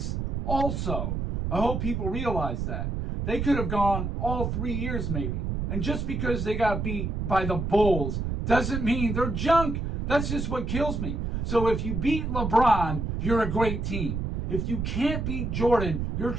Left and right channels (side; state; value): right; noise; rumble, 2 dB below the sound